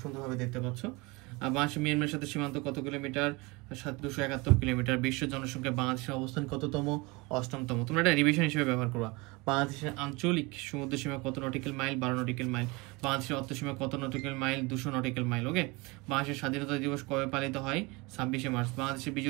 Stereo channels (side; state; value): left; quieter; 25.5 dB